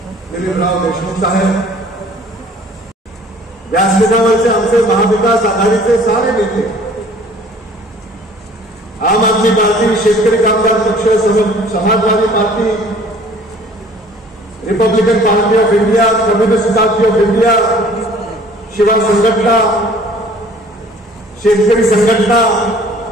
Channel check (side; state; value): both; normal; correlation 0.52